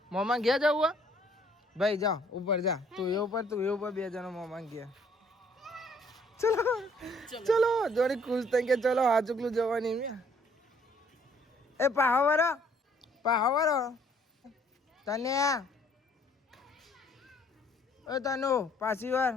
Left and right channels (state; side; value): normal; both; correlation 0.62